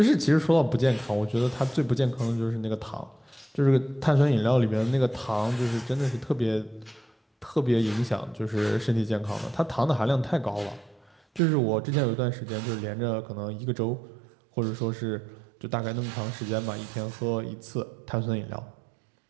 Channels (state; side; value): drops out; left; at 11.4 s